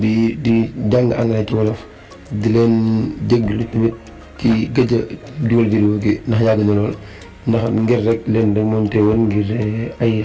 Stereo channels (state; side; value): identical; both; correlation 1.00